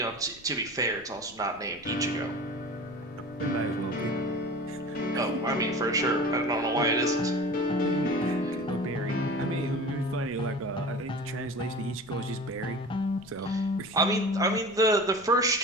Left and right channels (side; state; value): left; noise; rumble, 24 dB below the sound